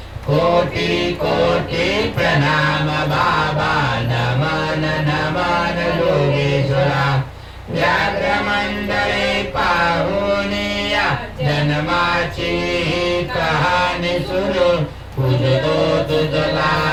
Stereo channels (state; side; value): identical; both; correlation 1.00